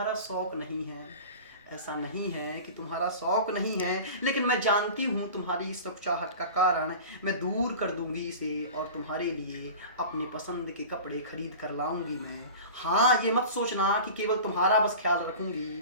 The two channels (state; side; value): inverted; both; correlation -0.36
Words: शौक़ नहीं है, ऐसा नहीं है कि तुम्हारा शौक़ नहीं है, लेकिन मैं जानती हूँ तुम्हारी इस चाहत का कारण मैं दूर कर दूंगी इसे और तुम्हारे लिए अपने पसंद के कपड़े खरीद कर लाऊंगी मैं। हाँ, ये मत सोचना कि केवल तुम्हारा बस ख्याल